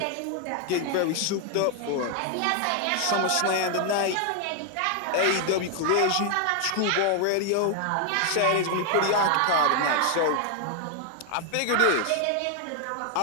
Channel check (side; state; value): both; different; correlation 0.00